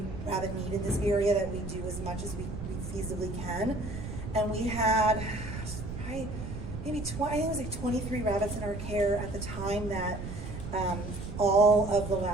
rabbit need in this area that we do as much as we feasibly can. And we had maybe 23 rabbits in our care at the time that all of the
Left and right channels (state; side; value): noise; right; rumble, 7 dB below the sound